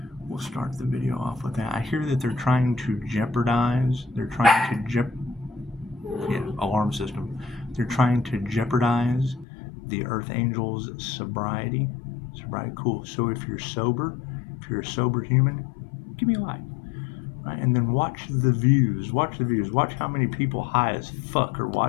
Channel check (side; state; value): right; drops out; at 9.5 s